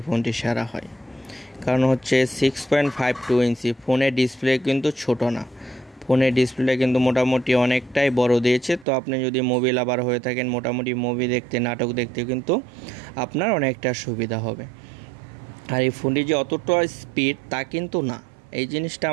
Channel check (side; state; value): left; drops out; at 8.8 s